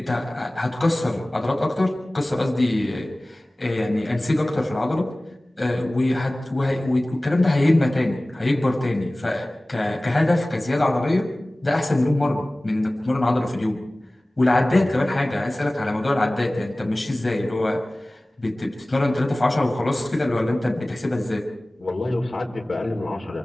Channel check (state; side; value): normal; both; correlation 0.98